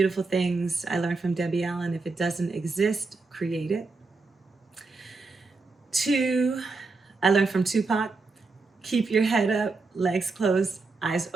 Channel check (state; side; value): quieter; left; 3.9 dB